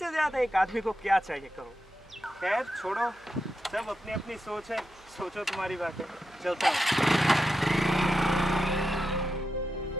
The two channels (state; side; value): noise; right; hum, 29 dB below the sound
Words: ज़्यादा एक आदमी को क्या चाहिए कहो? खैर छोड़ो, सब अपनी अपनी सोच है, सोचो तुम्हारी बात है, चलता हूँ।